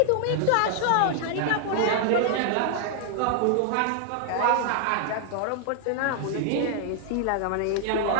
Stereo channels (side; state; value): both; different; correlation -0.01